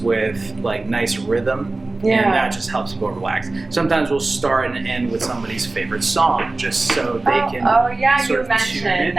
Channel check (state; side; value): quieter; left; 3.2 dB